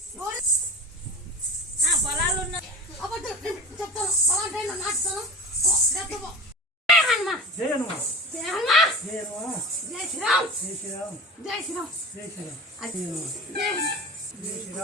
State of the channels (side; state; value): both; normal; correlation 0.34